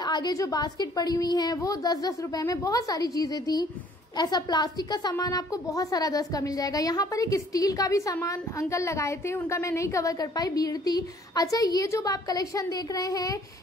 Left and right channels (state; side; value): normal; both; correlation 0.59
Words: आगे जो बास्केट पड़ी हुई हैं वो 10-10 रुपए में। बहुत सारी चीजें थी। ऐसा प्लास्टिक का सामान आपको बहुत सारा 10 का मिल जाएगा। यहाँ पर एक स्टील का भी सामान अंकल लगाए थे, उनका मैं नहीं कवर कर पाई, भीड़ थी। अच्छा, ये जो आप कलेक्शन देख रहे हैं